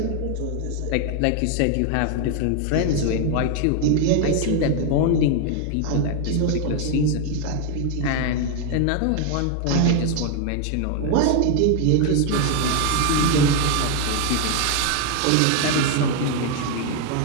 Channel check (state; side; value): different; both; correlation 0.00